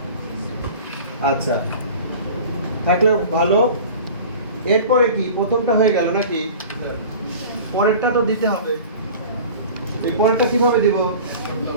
আচ্ছা থাকলে ভালো এরপরে কি প্রথমটা হয়ে গেল নাকি পরেরটা তো দিতে হবে এই পরেরটা কিভাবে দিব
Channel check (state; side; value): inverted; both; correlation -0.40